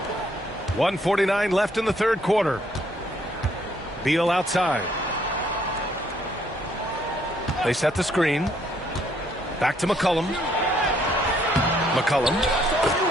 .149 left in the third quarter. Beal outside. They set the screen. Back to McCollum. McCollum.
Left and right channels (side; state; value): both; normal; correlation 0.68